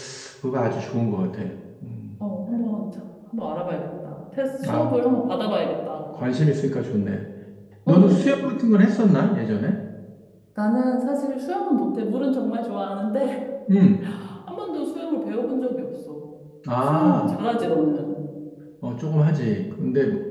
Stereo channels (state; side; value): identical; both; correlation 1.00